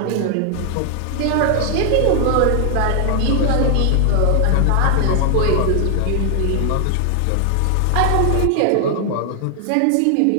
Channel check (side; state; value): both; different; correlation 0.00